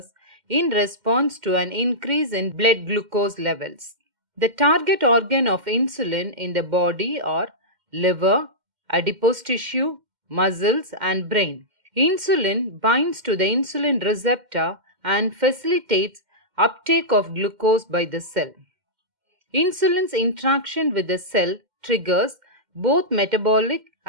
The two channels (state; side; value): late; left; 2.1 ms